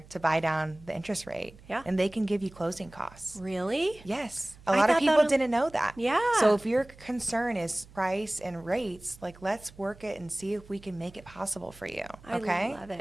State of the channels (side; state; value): right; noise; hum, 22 dB below the sound